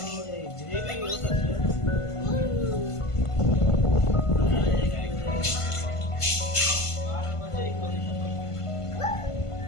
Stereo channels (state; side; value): late; right; 1.5 ms